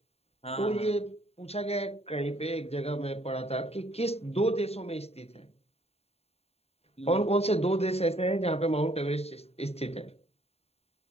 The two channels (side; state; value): right; late; 0.30 ms